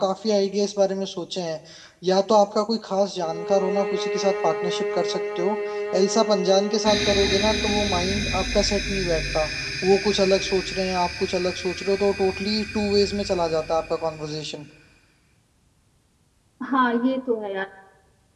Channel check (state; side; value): identical; both; correlation 1.00